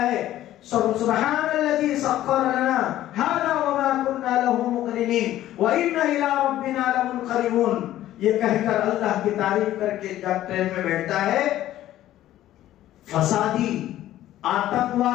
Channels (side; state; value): right; quieter; 13.6 dB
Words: ہے، سبحان الذی سخر لنا ھذا وما كنا له مقرنین وإنا إلى ربنا لمنقلبون، یہ کہہ کر اللہ کی تعریف کر کے جب ٹرین میں بیٹھتا ہے، فسادی،